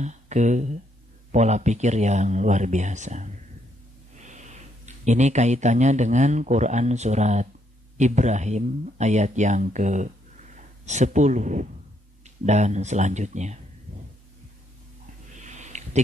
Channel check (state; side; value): normal; both; correlation 0.74